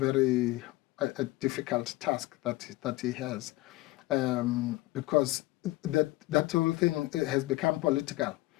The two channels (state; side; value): quieter; right; 19.7 dB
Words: difficult task that he has, because that whole thing has become political.